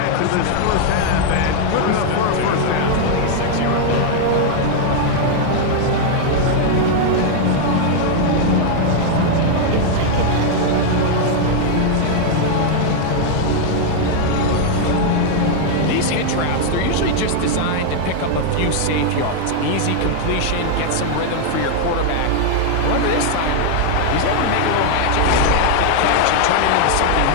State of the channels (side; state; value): both; different; correlation 0.00